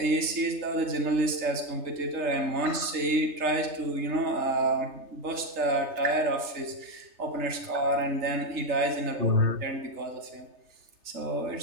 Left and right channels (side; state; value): left; late; 3.3 ms